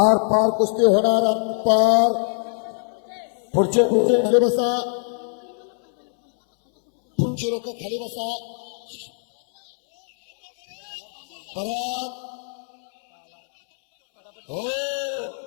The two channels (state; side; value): silent; right; 64 dB below the other